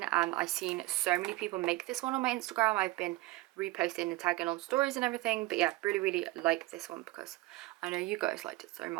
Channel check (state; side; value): quieter; left; 19.8 dB